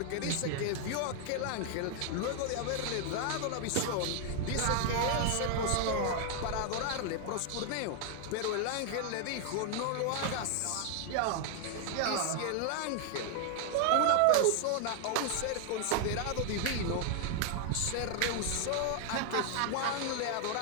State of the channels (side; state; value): both; different; correlation 0.00